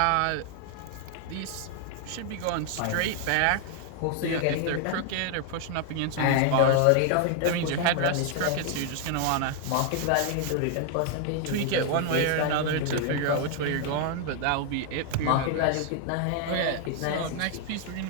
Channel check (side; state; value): both; different; correlation 0.00